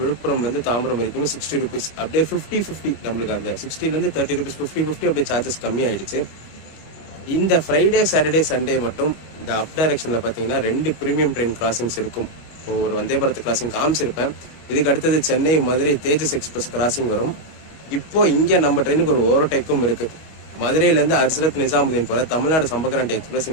விழுப்புரம்லேருந்து தாம்பரம் வரைக்கும் 60 rupees, அப்படியே 50-50 நம்மளுக்கு அந்த 60லேருந்து 30 rupees 50-50 அப்படியே சார்ஜஸ் கம்மி ஆயிடுச்சு. இந்த ஃப்ரைடே சாட்டர்டே சண்டே மட்டும் இந்த அப் டைரக்ஷனில் பார்த்தீங்கன்னா 2 ப்ரீமியம் ட்ரெயின் கிராசிங்ஸ் இருக்கும். ஸோ ஒரு வந்தே பாரத் கிராசிங் காமிச்சிருப்பேன். இதுக்கு அடுத்தது சென்னை மதுரை தேஜஸ் எக்ஸ்பிரஸ் கிராசிங் வரும். இப்போ இங்கே நம்ம ட்ரெயினுக்கு ஒரு ஓவர்டேக்கும் இருக்கு. மதுரையிலேருந்து ஹஸ்ரத் நிசாமுதீன் போல தமிழ்நாடு சம்பக்ராந்தி எக்ஸ்பிரஸ்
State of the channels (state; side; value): late; right; 25 ms